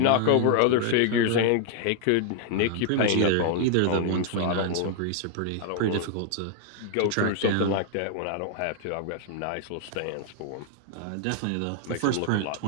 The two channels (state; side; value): different; both; correlation -0.01